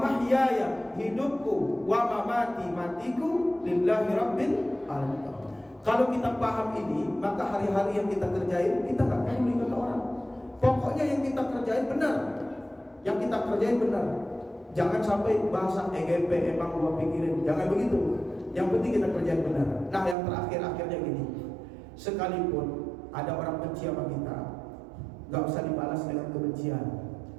hidupku, wa mamati, matiku, lillahi rabbil alamin. Kalau kita paham ini, maka hari-hari yang kita kerjain, kita gak peduli kata orang. Pokoknya yang kita kerjain benar. Jangan sampai bahasa EGP emang gua pikirin. Jangan begitu. Yang penting kita kerjain benar. Nah, yang terakhir-akhirnya gini. Sekalipun ada orang benci sama kita, gak usah dibalas dengan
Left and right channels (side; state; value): left; drops out; at 20.2 s